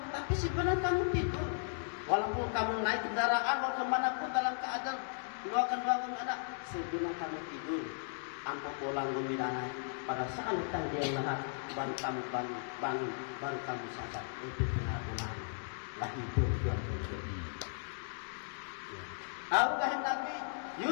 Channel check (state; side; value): silent; right; digital silence